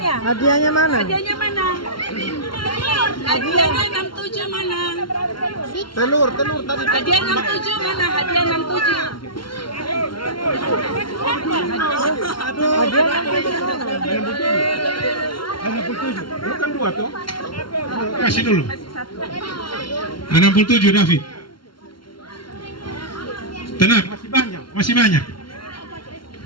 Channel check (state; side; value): late; right; 0.73 ms